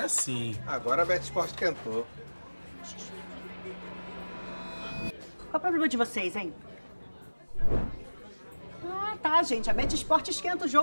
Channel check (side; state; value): both; inverted; correlation -1.00